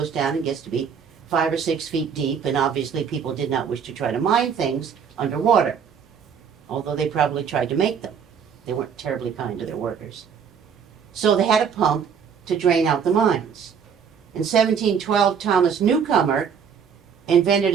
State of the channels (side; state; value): left; quieter; 7.1 dB